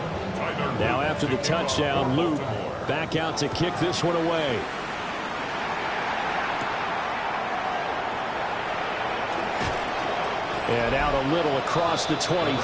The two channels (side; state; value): both; identical; correlation 1.00